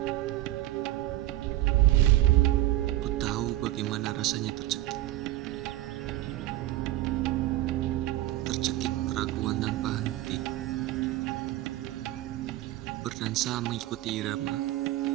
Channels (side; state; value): left; quieter; 15.6 dB